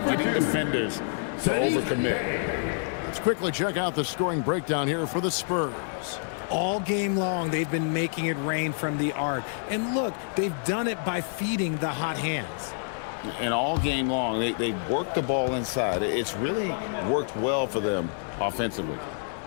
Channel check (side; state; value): right; silent; 60 dB below the other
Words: getting defenders to overcommit. Let's quickly check out the scoring breakdown here for the Spurs. All game long, they've been making it rain from the arc. And look, they've done it by feeding the hot hands. And all game long, they worked the ball inside. It's really worked well for them offensively.